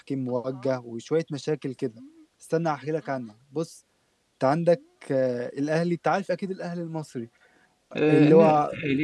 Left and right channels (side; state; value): both; identical; correlation 1.00